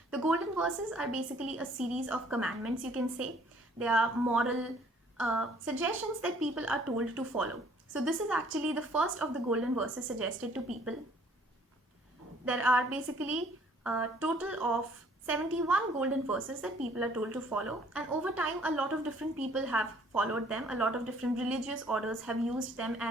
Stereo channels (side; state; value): both; normal; correlation 0.59